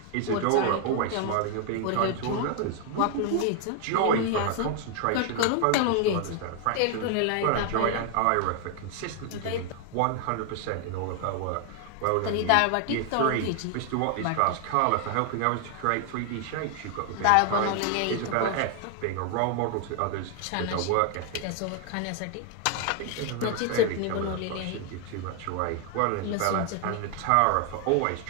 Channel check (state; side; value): different; both; correlation 0.00